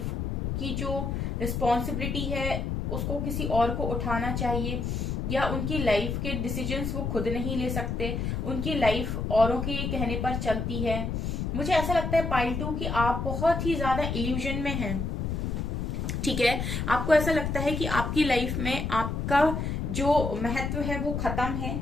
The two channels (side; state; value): left; noise; rumble, 2 dB below the sound